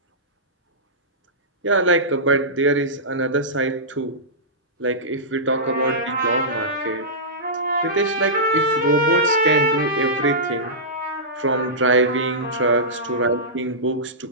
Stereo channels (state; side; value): normal; both; correlation -0.16